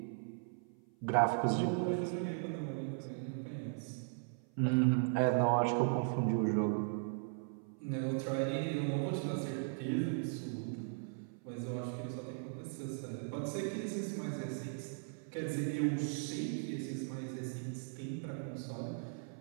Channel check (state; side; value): silent; left; 52 dB below the other